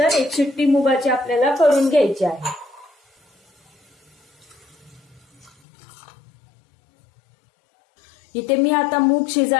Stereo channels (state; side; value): drops out; right; at 5.5 s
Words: 1 शिट्टी मुगाची आपल्याला करून घ्यायची आहे। इथे मी आता मूग